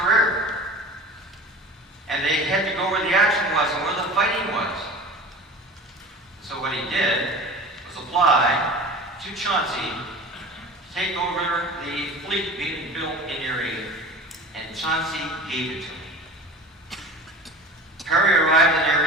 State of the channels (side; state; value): both; normal; correlation 0.38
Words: And they had to go where the action was and where the fighting was. So what he did was apply to Chauncey to take over the fleet being built in Erie, and Chauncey gave it to him. Perry arrived in